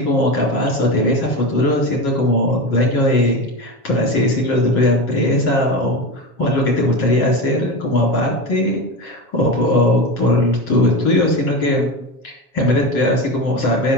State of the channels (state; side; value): late; right; 7.2 ms